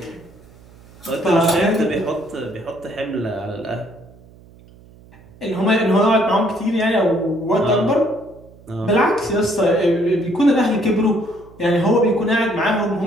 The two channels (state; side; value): noise; right; hum, 24 dB below the sound